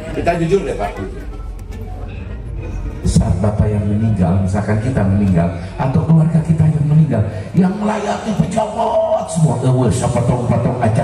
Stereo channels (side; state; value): both; identical; correlation 1.00